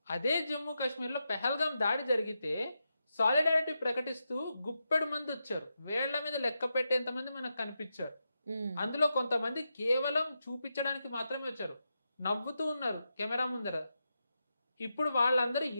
అదే జమ్మూ కాశ్మీర్ లో పెహల్గాం దాడి జరిగితే సాలిడారిటీ ప్రకటిస్తూ గుప్పెడు మంది వచ్చారు, వేళ్ల మీద లెక్క పెట్టేంత మంది మనకు కనిపించారు. అందులో కొంతమంది కేవలం చూపించడానికి మాత్రమే వచ్చారు, నవ్వుతూ ఉన్నారు కెమెరా ముందర. ఇప్పుడు వాళ్ళందరూ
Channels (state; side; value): inverted; both; correlation -0.87